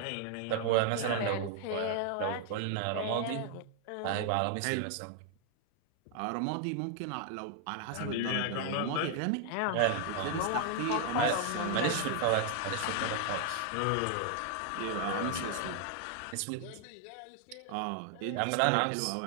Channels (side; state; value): both; different; correlation 0.00